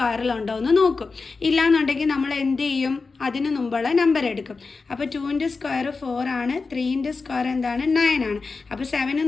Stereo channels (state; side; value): quieter; right; 4.3 dB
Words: എന്ന് നോക്കും. ഇല്ലയെന്നുണ്ടെങ്കിൽ നമ്മൾ എന്ത് ചെയ്യും? അതിന് മുമ്പുള്ള നമ്പർ എടുക്കും. അപ്പോൾ 2ൻ്റെ സ്ക്വയർ 4 ആണ്, 3ൻ്റെ സ്ക്വയർ എന്താണ്? 9 ആണ്. അപ്പോൾ 7ന്